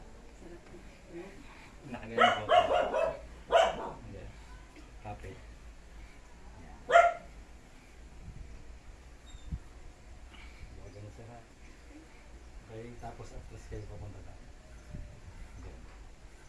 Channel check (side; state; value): both; identical; correlation 1.00